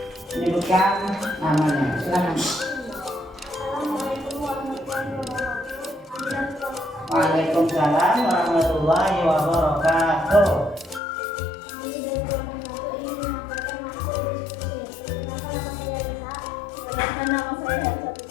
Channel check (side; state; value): right; drops out; at 11.0 s